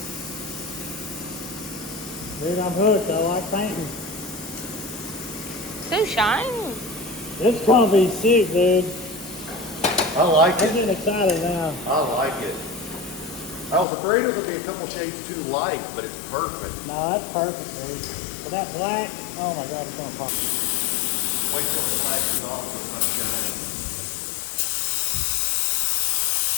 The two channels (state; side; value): drops out; right; at 13.9 s